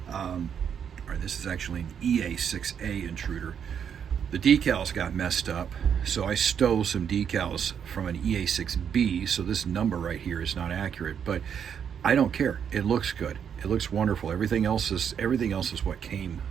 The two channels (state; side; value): quieter; left; 7.9 dB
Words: Or this is actually an EA6A intruder. The decals got messed up, so I stole some decals from an EA6B, so this number right here is not accurate, but I don't care. It looks good. It looks wonderful. Everything else is what came